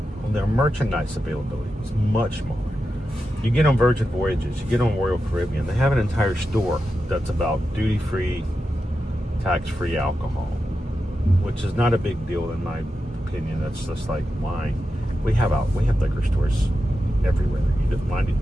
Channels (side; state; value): both; normal; correlation 0.90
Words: And their merchandise availability was much smaller. You get on Virgin Voyages, you get on Royal Caribbean, they have an entire store that's about duty-free, tax-free alcohol, which is not a big deal in my opinion. That's just like wine. We have liquor stores everywhere. You don't mind it,